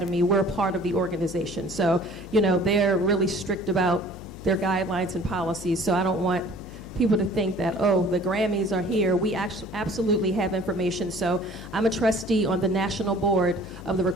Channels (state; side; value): noise; left; hum, 14 dB below the sound